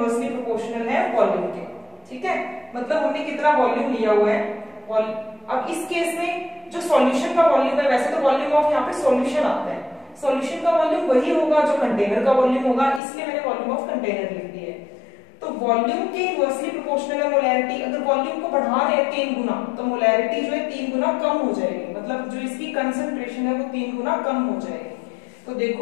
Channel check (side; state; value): right; drops out; at 13.0 s